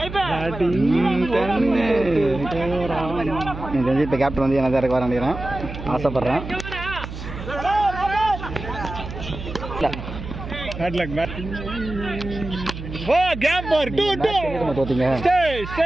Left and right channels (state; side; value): noise; right; hum, 9 dB below the sound